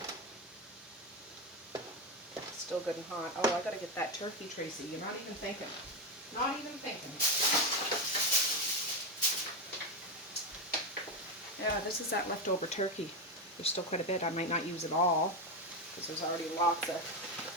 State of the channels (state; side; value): normal; both; correlation 0.12